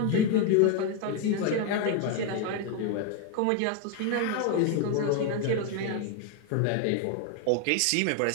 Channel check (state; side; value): different; both; correlation 0.01